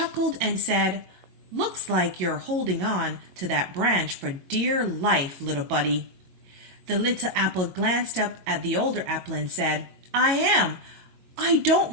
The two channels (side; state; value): left; late; 22 ms